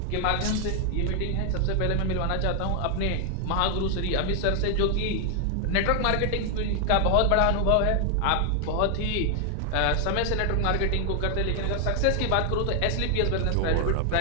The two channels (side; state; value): both; different; correlation 0.00